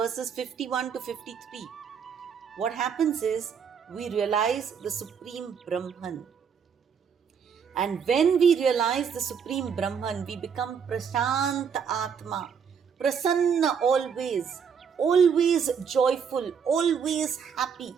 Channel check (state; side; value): quieter; left; 6.9 dB